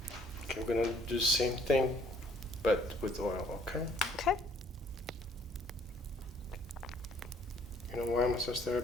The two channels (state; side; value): normal; both; correlation 0.62